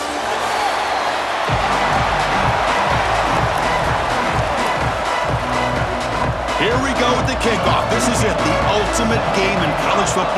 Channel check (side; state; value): both; identical; correlation 1.00